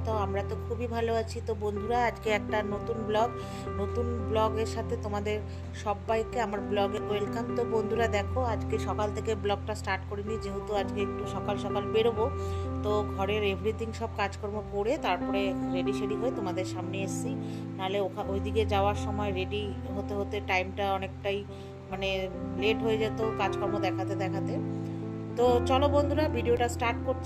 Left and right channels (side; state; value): both; identical; correlation 1.00